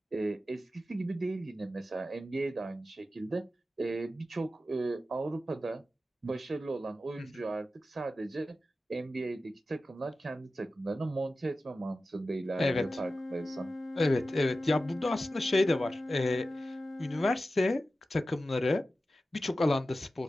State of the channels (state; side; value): normal; both; correlation 0.93